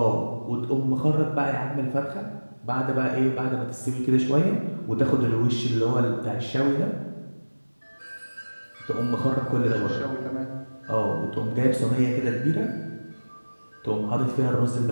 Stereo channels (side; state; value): both; inverted; correlation -1.00